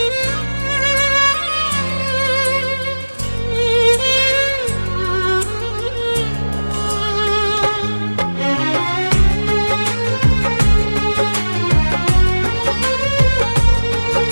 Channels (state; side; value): inverted; both; correlation -1.00